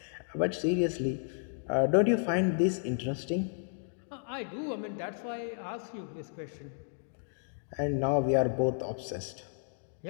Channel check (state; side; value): silent; right; digital silence